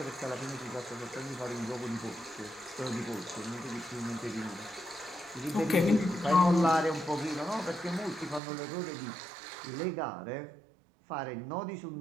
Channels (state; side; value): drops out; left; at 8.4 s